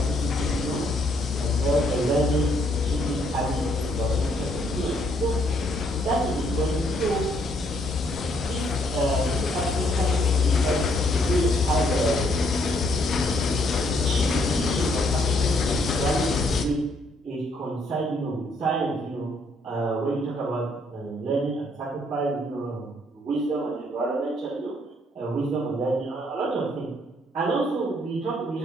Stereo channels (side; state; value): both; normal; correlation 0.69